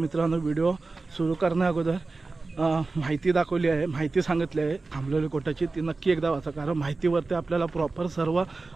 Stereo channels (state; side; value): quieter; left; 3.7 dB